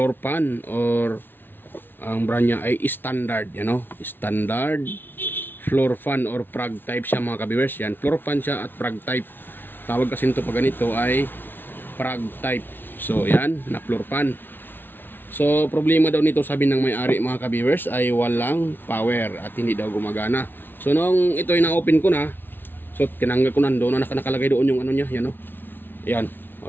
fan, or ang brand niya ay standard, standard floor fan or prag type siya mga ka-viewers. Yan, floor fan siya at prag type. Tawag kasi nito pag ganito ay prag type. So yan, na floor fan. So problema daw nito, sabi ng may-ari mga ka-viewers, ay walang power at hindi daw gumagana. So nung ito ay na-open ko na, so tinanggal ko na, doon na nakalagay doon yung ano niya, yan o. Ayan, o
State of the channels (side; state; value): right; late; 0.097 ms